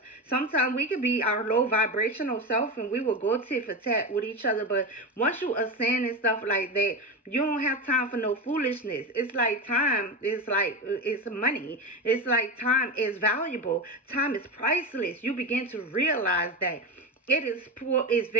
sometimes we could be our low vibrational self and we will go tit for tat with each other. But once you ascend and stuff like that, you don't have time for no foolishness. It's like time is like, it's money. It's like time is valuable. Time is priceless. You begin to realize that it's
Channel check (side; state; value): both; normal; correlation 0.20